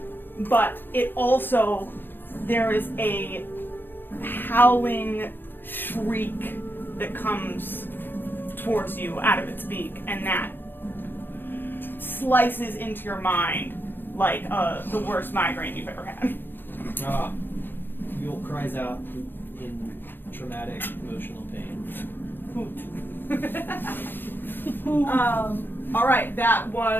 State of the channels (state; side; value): late; right; 0.095 ms